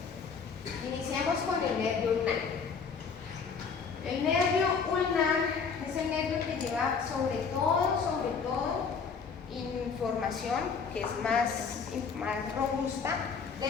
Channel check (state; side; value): quieter; right; 5.7 dB